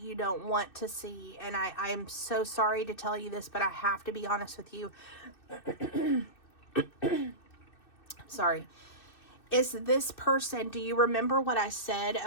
you don't want to see, and I'm so sorry to tell you this, but I have to be honest with you. Sorry. Is this person, do you remember what I said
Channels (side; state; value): right; late; 2.6 ms